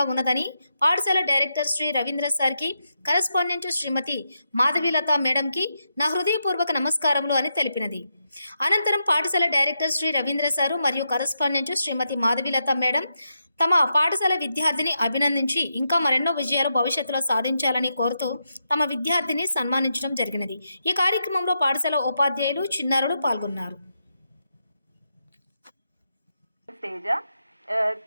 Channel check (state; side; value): inverted; both; correlation -0.85